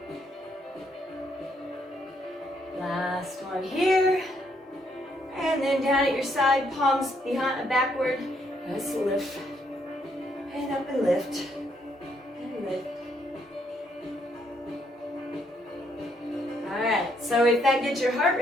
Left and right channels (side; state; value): both; normal; correlation 0.72